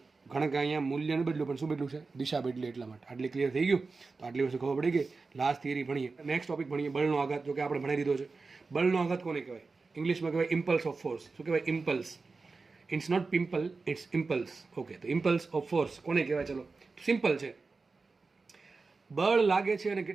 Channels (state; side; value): quieter; left; 4.1 dB